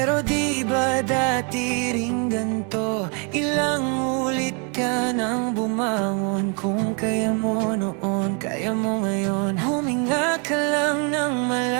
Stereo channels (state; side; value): quieter; left; 36.3 dB